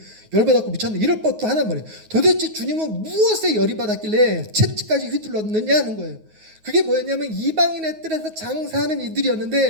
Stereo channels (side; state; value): left; late; 9.4 ms